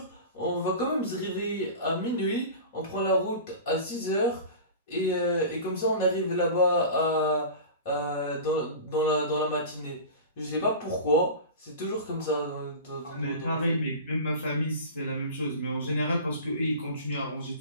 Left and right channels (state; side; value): inverted; both; correlation -0.33